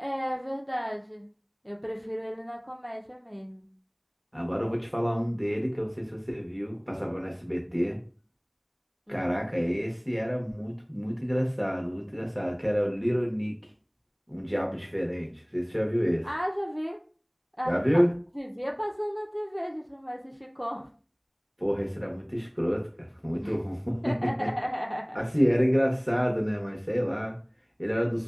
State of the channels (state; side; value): identical; both; correlation 1.00